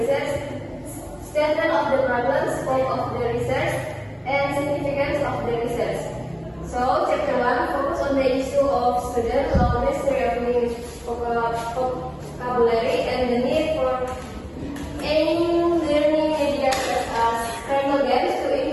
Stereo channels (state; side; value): identical; both; correlation 1.00